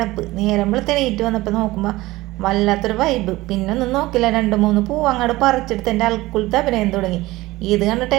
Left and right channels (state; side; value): quieter; left; 18.9 dB